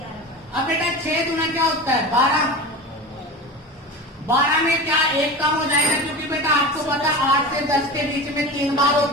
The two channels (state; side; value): normal; both; correlation 0.29